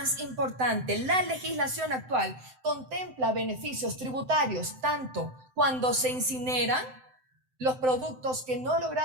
importante, la legislación actual contempla beneficios tributarios tanto cuando se incineran los productos que no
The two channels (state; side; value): late; left; 7.8 ms